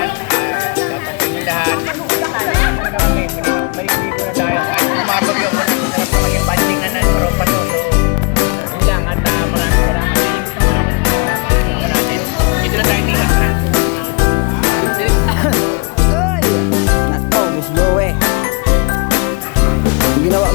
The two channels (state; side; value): quieter; right; 31.8 dB